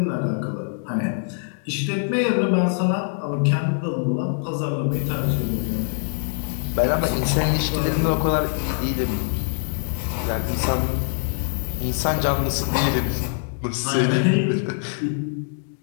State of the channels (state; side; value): silent; right; digital silence